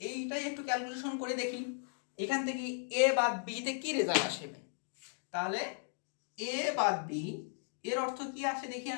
এইটাই একটু ক্যালকুলেশন করে দেখি এখান থেকে এ বাদ বি তে কি রেজাল্ট আসবে। তাহলে এ বাদ বি এর অর্থ কি আসে দেখি,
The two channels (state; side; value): silent; right; 54 dB below the other